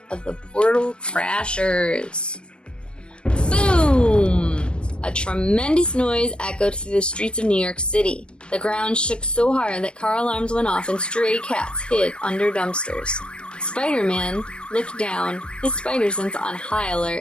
of the Portal Crashers. Boom! A tremendous noise echoed through the streets of New York City. The ground shook so hard that car alarms went off and stray cats hid under dumpsters. Spider-Man looked down, his spider sense on high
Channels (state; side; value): late; right; 0.056 ms